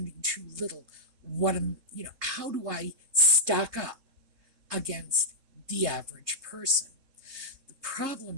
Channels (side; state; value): left; late; 3.7 ms